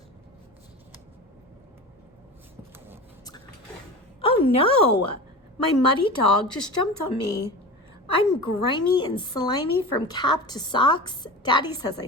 Oh no! My muddy dog just jumped on me. I'm grimy and slimy from cap to socks. Daddy says I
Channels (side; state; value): both; normal; correlation 0.31